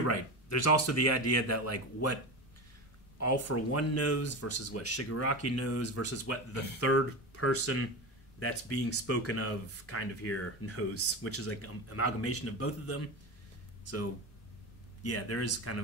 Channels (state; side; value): normal; both; correlation 0.23